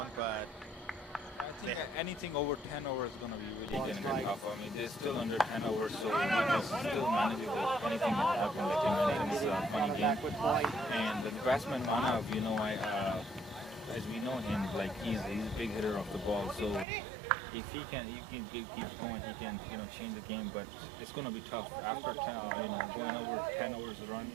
but I think anything over 10 overs is going to be really going to be tough. I mean, they're still under 10 overs, so it's still manageable. Anything can happen. It's a funny game. And the batsman Manav, as we know him, like he's a big hitter of the ball. So if he keeps going, he can change the game. But it's going to be tough after going over 10 overs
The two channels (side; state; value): left; drops out; at 16.9 s